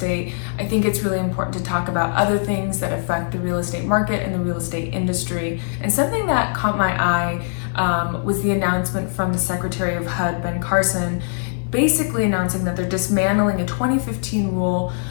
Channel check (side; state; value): right; silent; digital silence